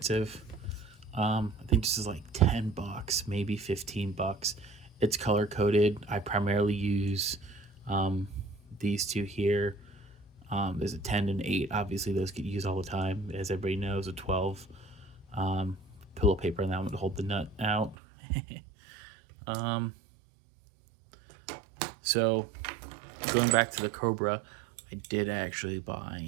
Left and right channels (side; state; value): left; drops out; at 17.9 s